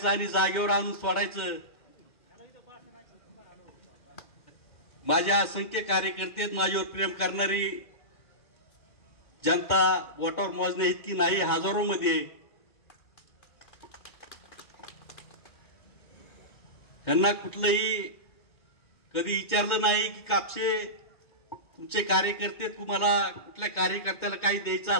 आणि जागेवर आणून सोडायचं। माझ्या असंख्य कार्यकर्ते, माझ्यावर प्रेम करणारी जनता बोटावर मोजणे इतकी नाही, हजारो मध्ये। त्यांना कुठलंही कधी विचारलं नाही की कापसे तुमचे कार्यकर्ते, तुम्हाला कुठल्या कार्यकर्त्याला काही द्यायचं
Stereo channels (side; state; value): right; late; 2.2 ms